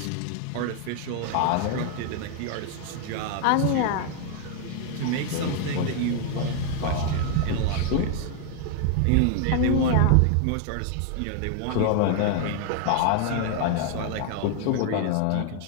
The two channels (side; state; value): both; different; correlation 0.00